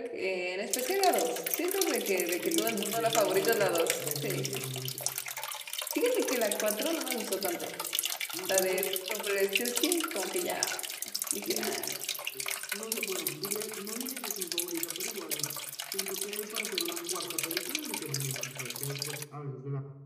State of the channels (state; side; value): identical; both; correlation 1.00